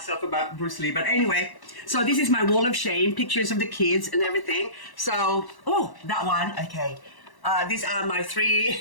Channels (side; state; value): right; late; 1.1 ms